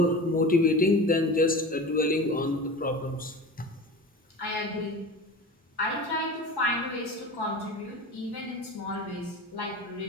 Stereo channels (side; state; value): both; normal; correlation 0.33